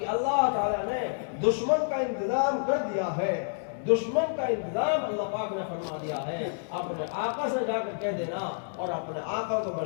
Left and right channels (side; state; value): right; silent; digital silence